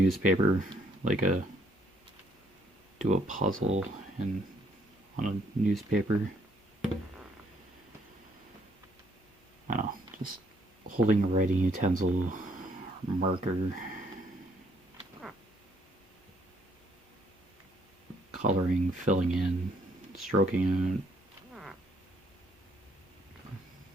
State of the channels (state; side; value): normal; both; correlation 0.68